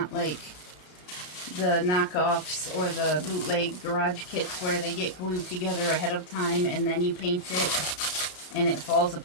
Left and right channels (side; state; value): right; late; 33 ms